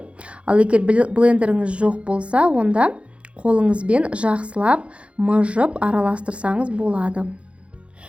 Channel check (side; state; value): left; late; 0.060 ms